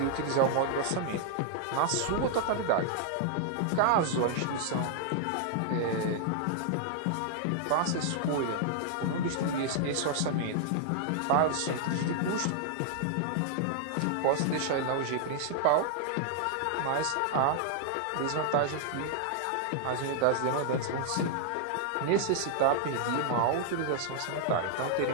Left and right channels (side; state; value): both; different; correlation 0.00